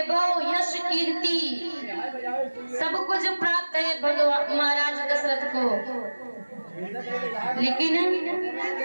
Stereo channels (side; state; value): both; inverted; correlation -1.00